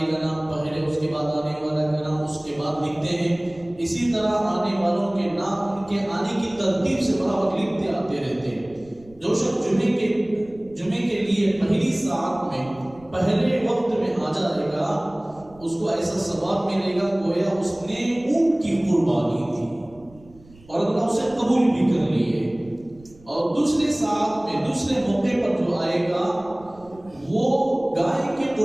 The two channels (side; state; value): right; noise; rumble, 25 dB below the sound